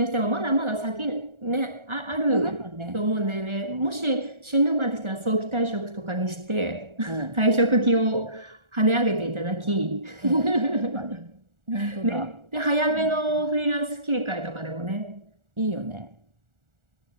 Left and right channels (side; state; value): left; late; 1.4 ms